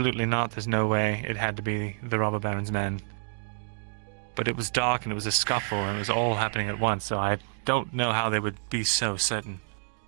not, there's no way, it had to be the robber baron's men. But it was dark and it was a scuffle and it was all happening at once, so I don't know how they would be so certain.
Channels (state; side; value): silent; left; 59 dB below the other